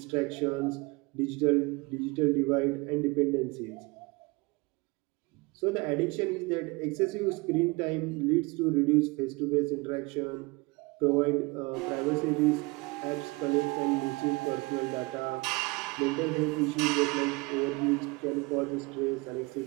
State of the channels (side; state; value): left; quieter; 25.8 dB